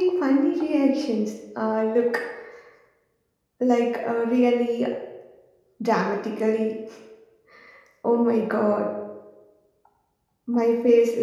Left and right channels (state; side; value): identical; both; correlation 1.00